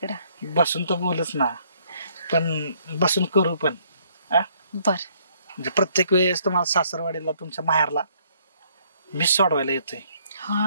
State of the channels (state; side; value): inverted; both; correlation -0.66